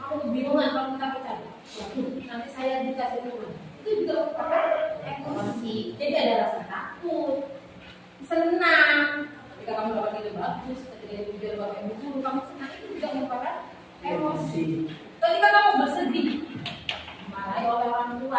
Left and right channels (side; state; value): both; identical; correlation 1.00